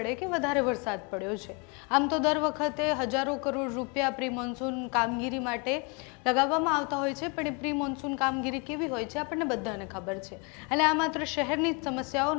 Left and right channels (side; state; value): right; quieter; 32.1 dB